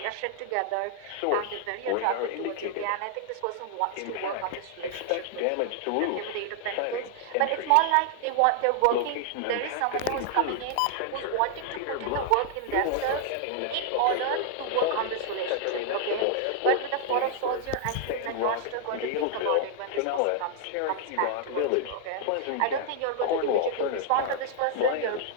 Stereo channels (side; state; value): both; different; correlation 0.00